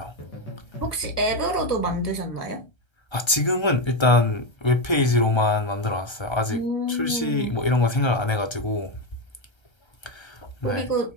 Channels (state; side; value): late; right; 1.3 ms